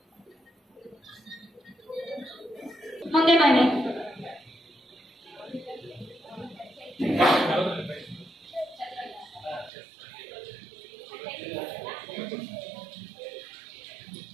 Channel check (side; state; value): left; drops out; at 9.7 s